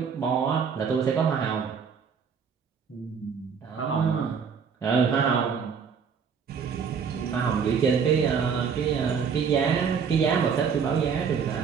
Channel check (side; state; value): left; quieter; 6.4 dB